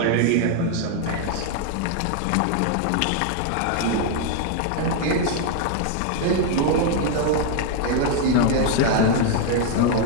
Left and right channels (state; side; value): different; both; correlation 0.00